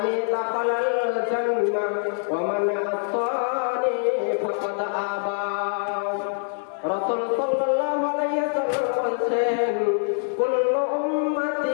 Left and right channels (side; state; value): right; silent; 62 dB below the other